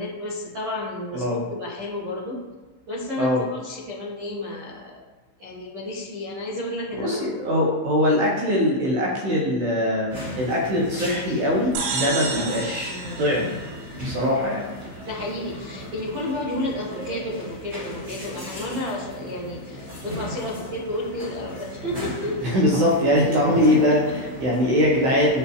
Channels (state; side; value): late; left; 15 ms